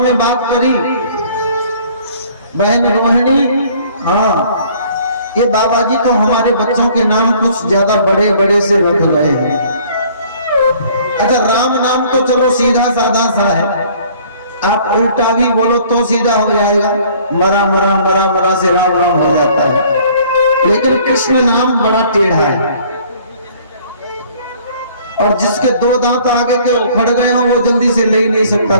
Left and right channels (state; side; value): inverted; both; correlation -0.56